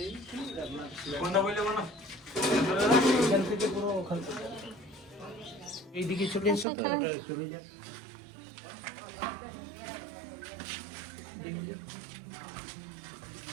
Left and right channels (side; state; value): left; drops out; at 6.7 s